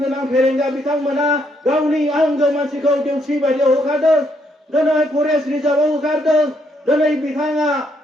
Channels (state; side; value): normal; both; correlation 0.73